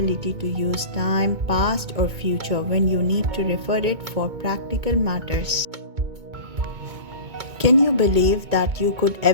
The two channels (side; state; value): left; late; 2.2 ms